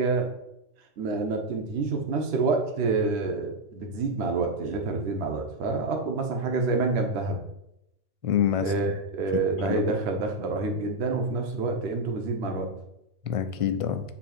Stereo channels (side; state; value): left; late; 1.5 ms